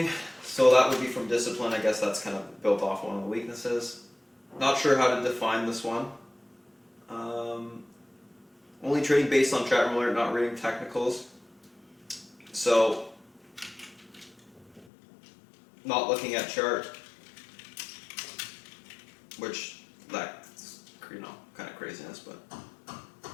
So that would be from discipline. I guess that's kind of built off one of the weaknesses. Not sure how to define this one. Only trading based on chart alert, not reading technicals. So, not looking at chart, which that's kind of craziness, but.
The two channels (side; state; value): right; drops out; at 14.9 s